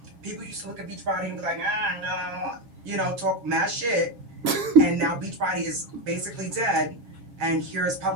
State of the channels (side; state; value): left; late; 7.4 ms